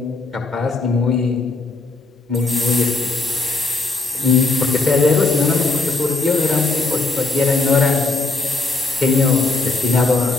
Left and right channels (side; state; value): right; quieter; 3.5 dB